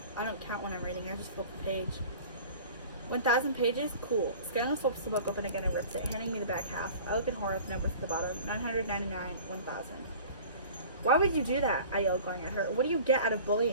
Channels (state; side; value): inverted; both; correlation -0.43